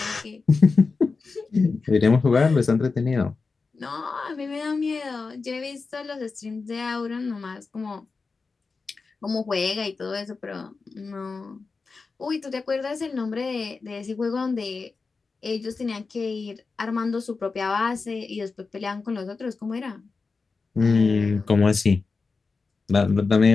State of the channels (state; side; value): quieter; right; 4.4 dB